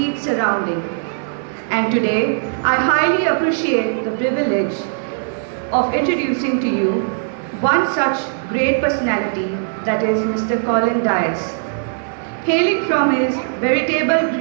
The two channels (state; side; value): silent; left; digital silence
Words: surrounding. And today, I highly appreciate the privilege of introducing to you one such great personality, that is Mr. Colin Dias. Hailing from his veritable